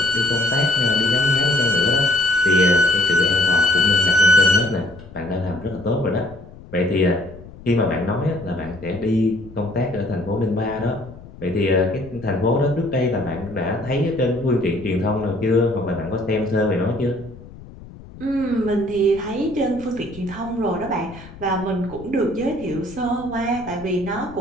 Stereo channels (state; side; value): noise; left; rumble, 18 dB below the sound